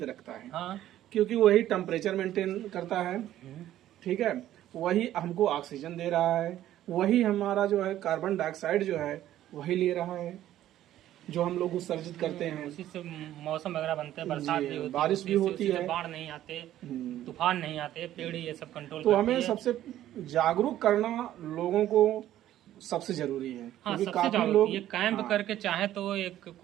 रखता है। हाँ। क्योंकि वही टेम्परेचर मेंटेन करता है, ठीक है, वही हमको ऑक्सीजन दे रहा है, वही हमारा जो है कार्बन डाइऑक्साइड जो है वही ले रहा है जो हम लोग उत्सर्जित करते हैं। उसी से मौसम वगैरह बनते हैं, बरसात भी होती है, बारिश भी होती है, बाढ़ नहीं आते, तूफान नहीं आते, पेड़ ये सब कंट्रोल तो हमें सबसे जागरूक करना लोगों को सबसे जरूरी है। हाँ, सबसे जागरूक ये कैंप करके चाहे तो एक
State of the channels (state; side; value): quieter; left; 12.9 dB